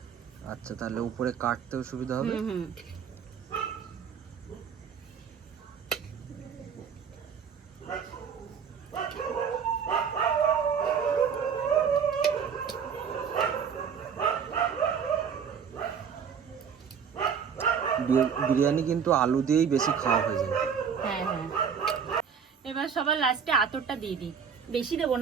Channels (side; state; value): left; quieter; 7.0 dB